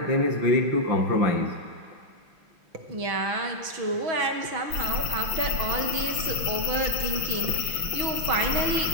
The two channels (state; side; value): late; left; 6.2 ms